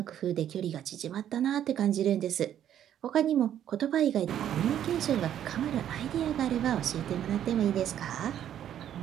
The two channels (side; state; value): left; quieter; 10.5 dB